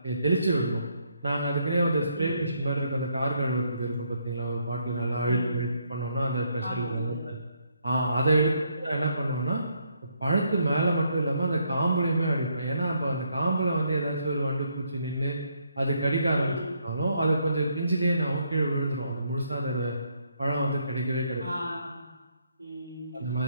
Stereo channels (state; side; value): inverted; both; correlation -0.73